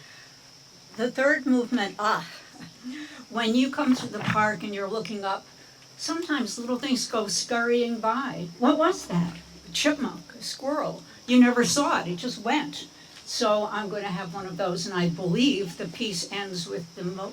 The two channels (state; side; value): identical; both; correlation 1.00